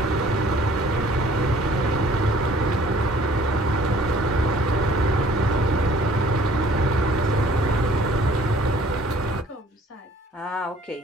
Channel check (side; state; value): both; normal; correlation 0.55